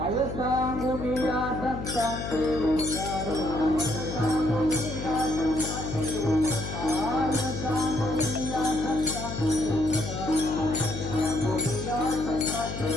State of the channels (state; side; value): noise; left; hum, 6 dB below the sound